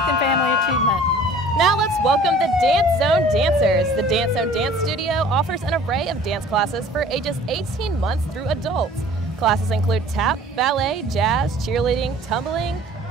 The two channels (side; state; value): both; normal; correlation 0.49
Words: family achievement. Now let's welcome the Dance Zone Dancers. The Dance Zone Dance Studio offers an array of dance classes for ages 18 months through adults. Classes include tap, ballet, jazz, cheerleading, tumbling,